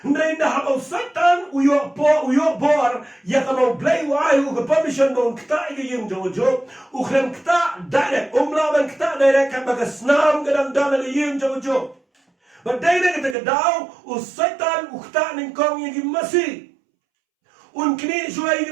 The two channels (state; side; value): drops out; left; at 13.4 s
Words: ndai na habaw satan uyo bor yakamaw blay uai u permission mo kta igim jojo ukhrem kta direct umlaban kta direct kan baga snam gadang dana igim jojo badai na kita daw u satan ukta ning kong igim masi unkini juai